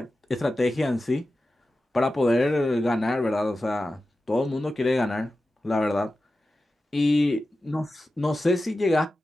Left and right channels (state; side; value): normal; both; correlation 0.93